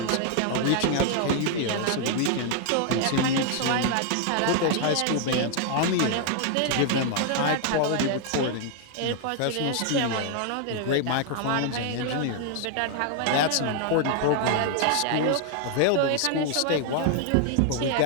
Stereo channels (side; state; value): both; different; correlation 0.00